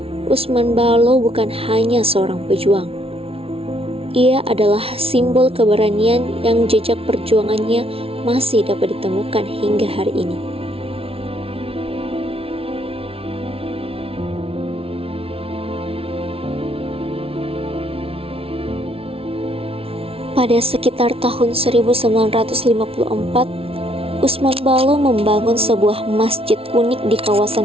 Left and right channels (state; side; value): late; left; 0.27 ms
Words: Usman Balo bukan hanya seorang pejuang. Ia adalah simbol keberanian yang jejak perjuangannya masih dapat ditemukan hingga hari ini. Pada sekitar tahun 1954, Usman Balo membangun sebuah masjid unik di